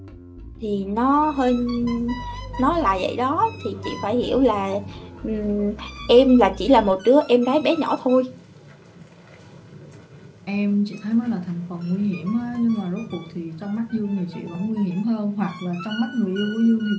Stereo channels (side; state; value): both; identical; correlation 1.00